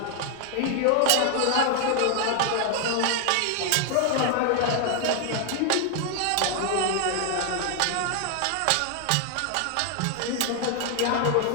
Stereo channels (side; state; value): both; different; correlation 0.00